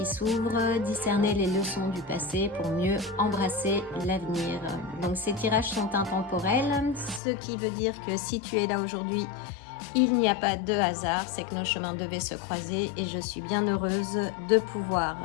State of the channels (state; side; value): drops out; right; at 7.2 s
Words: s'ouvrent, discerner les leçons du passé pour mieux embrasser l'avenir. Donc ces tirages sont intemporels, ce qui veut dire que si tu es là aujourd'hui, il n'y a pas de hasard, c'est que nos chemins devaient se croiser et je suis bien heureuse de pouvoir